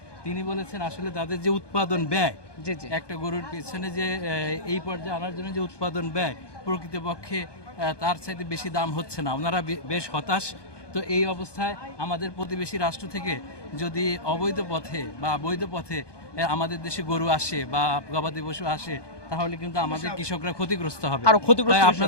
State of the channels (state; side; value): late; right; 1.2 ms